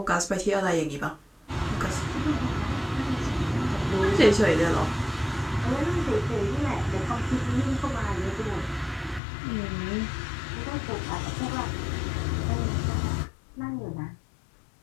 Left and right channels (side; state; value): right; drops out; at 9.2 s